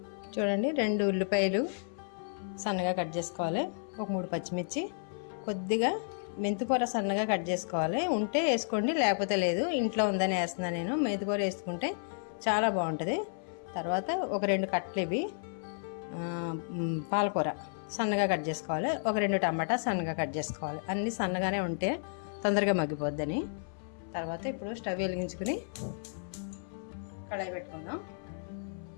చూడండి, 2 ఉల్లిపాయలు సన్నగా కట్ చేసుకోవాలి. ఒక 3 పచ్చిమిర్చి, కొద్దిగా మెంతికూర సన్నగా కట్ చేసుకోవాలి. ఉంటే వేసుకోండి, లేకపోతే లేదు. ఇంట్లో ఉందని వేస్తున్నాను నేను. మెంతికూర వేసుకుంటే చాలా బాగుంటుంది. తర్వాత ఒక 2 కట్టలు ఇవి పాలకూర సన్నగా కట్ చేసుకోవాలి. ఒక 2 టమాటా సన్నగా కట్ చేసుకోవాలి. అన్నీ సన్నగానే ఉంటే తొందరగా మగ్గిపోద్దని. తర్వాత ఇప్పుడు స్టవ్ వెలిగించుకుని కడాయి పెట్టుకుందాం.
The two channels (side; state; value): right; silent; 56 dB below the other